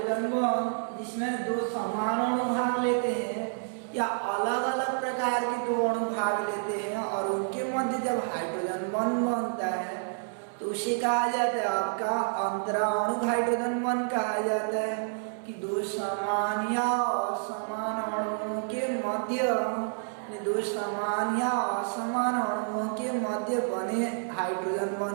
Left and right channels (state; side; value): silent; left; 57 dB below the other